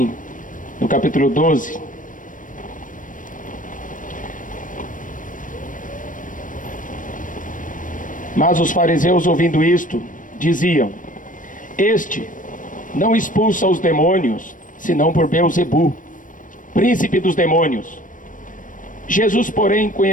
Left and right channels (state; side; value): late; right; 0.38 ms